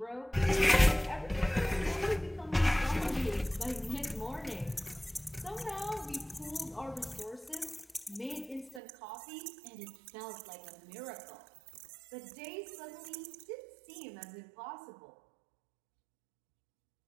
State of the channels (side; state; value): left; drops out; at 8.8 s